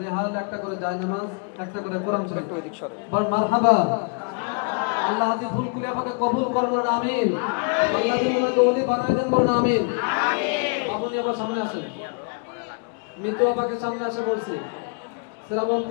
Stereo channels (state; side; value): quieter; right; 36.0 dB